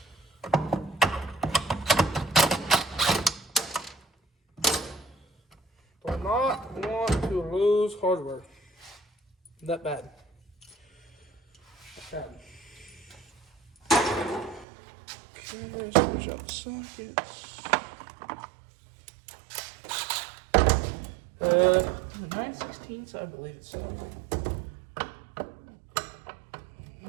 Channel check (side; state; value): left; drops out; at 14.7 s